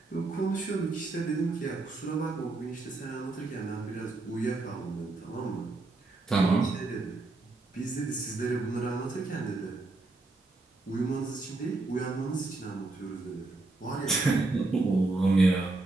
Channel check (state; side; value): quieter; left; 3.2 dB